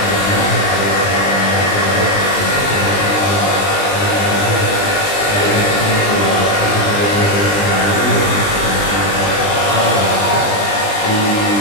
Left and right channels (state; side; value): late; right; 20 ms